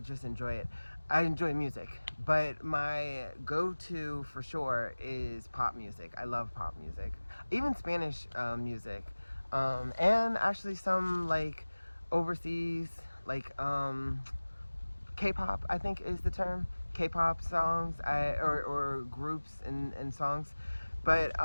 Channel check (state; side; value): inverted; both; correlation -1.00